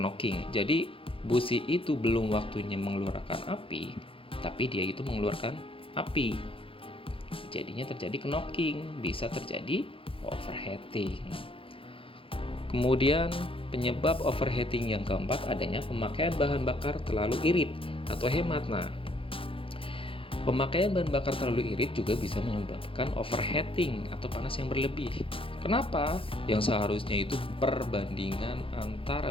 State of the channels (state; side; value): late; right; 0.26 ms